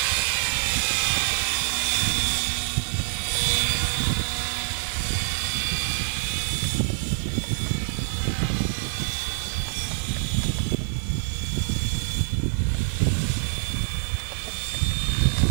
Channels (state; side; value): silent; left; digital silence